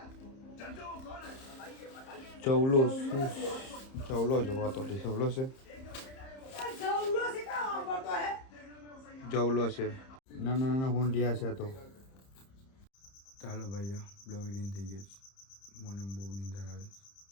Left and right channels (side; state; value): right; late; 30 ms